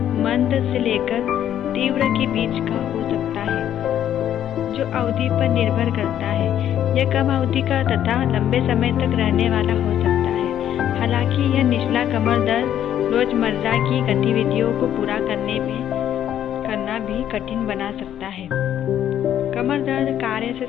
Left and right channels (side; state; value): right; quieter; 10.6 dB